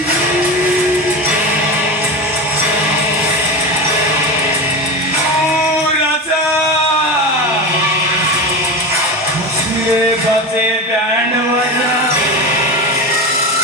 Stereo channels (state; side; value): normal; both; correlation 0.23